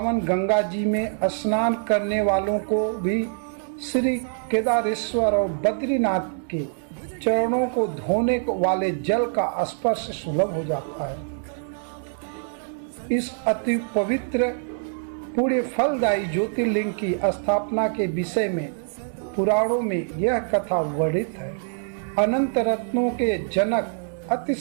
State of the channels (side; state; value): left; silent; digital silence